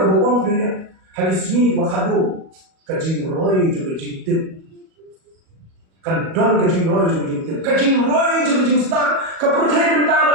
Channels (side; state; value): left; late; 37 ms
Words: orang dunia. Hari sini makado kaji roy jom kaji tip. Kan don kaji roy jom kaji tip. Kaji roy jom kaji start. Kepercayaan